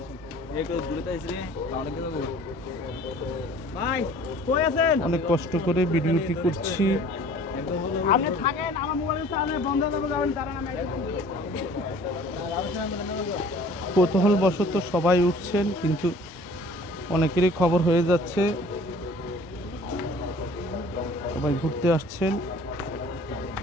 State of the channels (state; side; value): normal; both; correlation 0.50